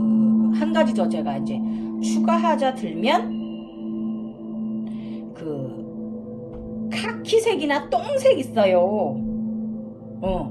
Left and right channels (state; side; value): identical; both; correlation 1.00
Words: 한 가지 더 제가 이제 추가하자 들면 카키색이나 똥색 있어요.